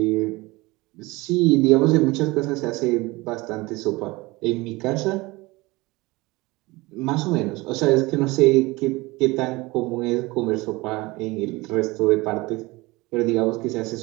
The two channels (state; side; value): quieter; left; 22.2 dB